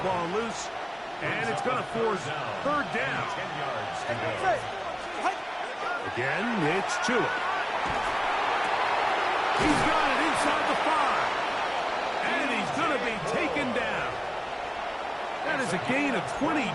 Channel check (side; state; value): both; identical; correlation 1.00